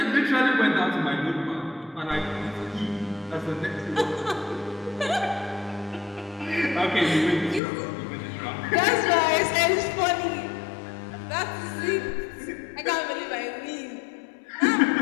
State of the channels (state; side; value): drops out; right; at 7.6 s